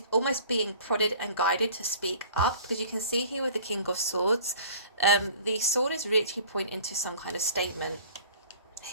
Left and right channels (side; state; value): both; inverted; correlation -0.48